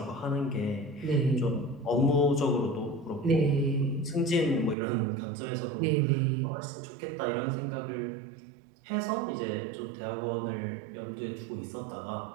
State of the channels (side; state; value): left; drops out; at 4.8 s